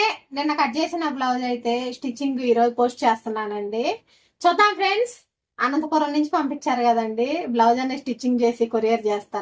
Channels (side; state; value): both; identical; correlation 1.00